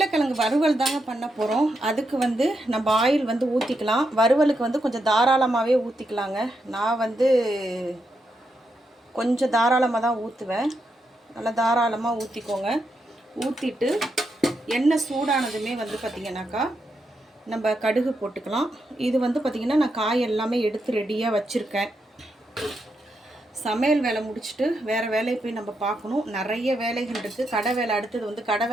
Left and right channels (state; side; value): normal; both; correlation 0.83